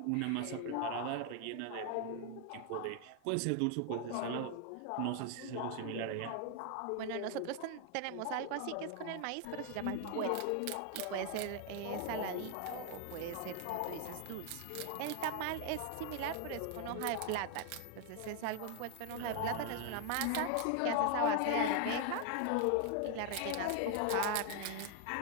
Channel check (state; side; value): different; both; correlation 0.00